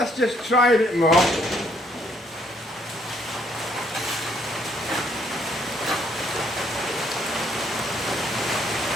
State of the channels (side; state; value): both; normal; correlation 0.67